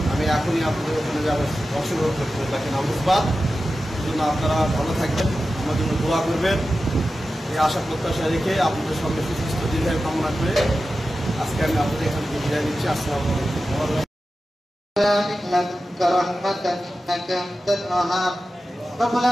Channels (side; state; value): both; normal; correlation 0.93